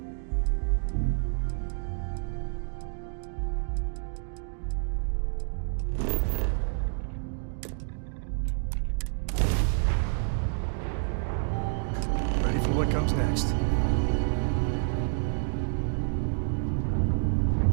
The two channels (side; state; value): left; silent; 59 dB below the other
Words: Ready for what comes next.